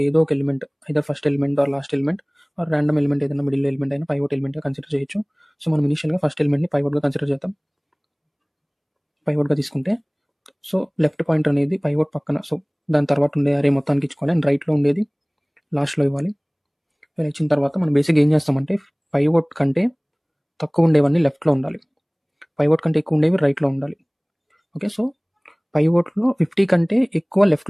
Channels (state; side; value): identical; both; correlation 1.00